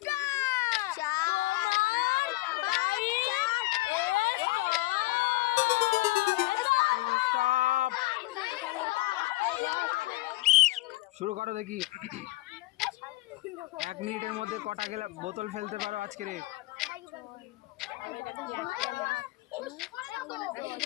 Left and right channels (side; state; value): right; quieter; 20.7 dB